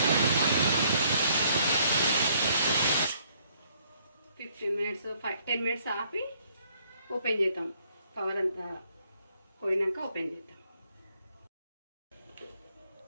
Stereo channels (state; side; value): inverted; both; correlation -0.66